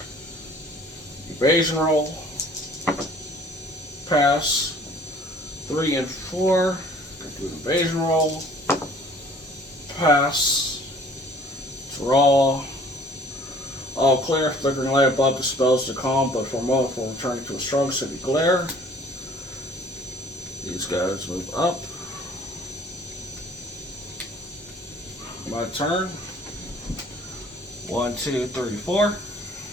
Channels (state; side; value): normal; both; correlation 0.53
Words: Evasion roll. Pass. 3 and 4. Do an evasion roll. Pass. Draw. All clear. Flickering light above dispels the calm, but for a moment before returning to a strong city glare. These guys move up. My turn. 1, 2, 3, 4.